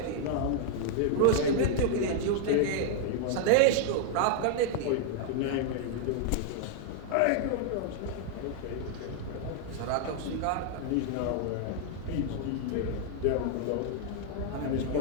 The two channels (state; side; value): different; both; correlation 0.00